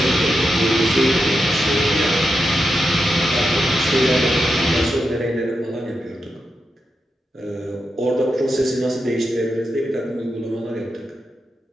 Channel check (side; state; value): both; normal; correlation 0.87